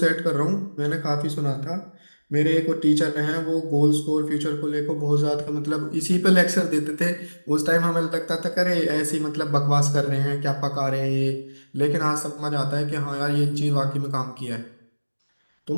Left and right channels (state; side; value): inverted; both; correlation -1.00